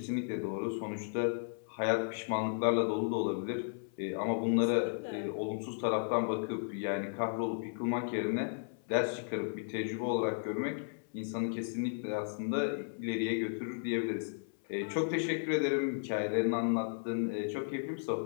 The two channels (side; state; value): right; silent; 55 dB below the other